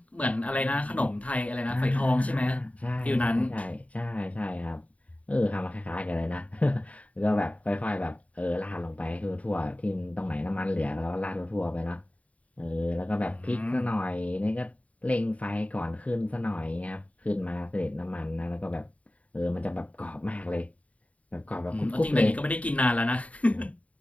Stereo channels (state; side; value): late; right; 0.068 ms